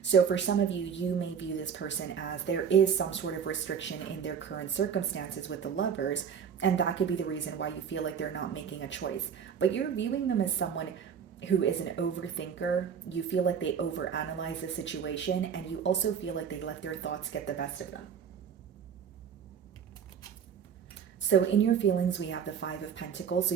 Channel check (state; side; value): quieter; left; 7.4 dB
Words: So for some of you, you may view this person as there is some sort of restriction in their current circumstances with the Lovers, and that could be the reason why you feel like they're not making a choice. But you're viewing them as someone who is an overthinker. You feel like they overanalyze the situation, and you also feel like they let their thoughts get the best of them. So in your feelings, we have the Five of Pentacles. So